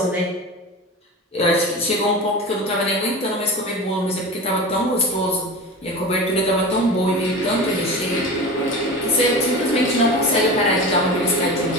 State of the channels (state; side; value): normal; both; correlation 0.30